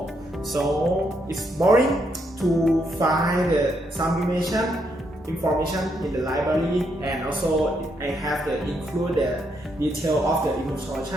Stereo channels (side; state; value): both; normal; correlation 0.77